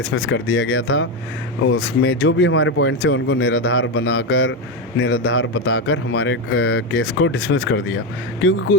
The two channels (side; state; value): both; normal; correlation 0.11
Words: कर दिया गया था। उसमें जो भी हमारे पॉइंट्स थे उनको निराधार बताकर हमारे केस को डिसमिस कर दिया।